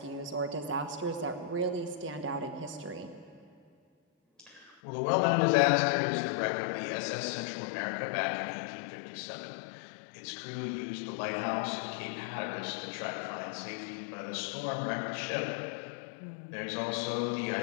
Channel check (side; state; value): right; drops out; at 4.8 s